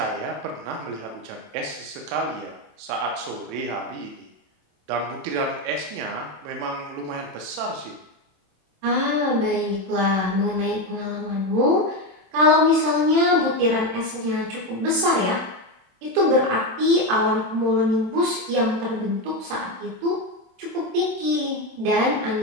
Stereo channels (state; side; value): late; left; 27 ms